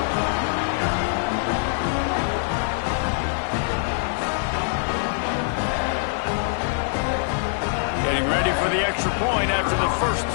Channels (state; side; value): silent; right; digital silence